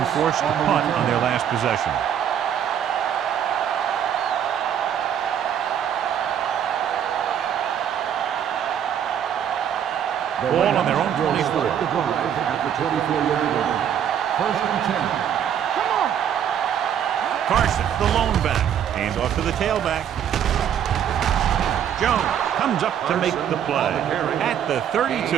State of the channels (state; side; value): quieter; left; 9.2 dB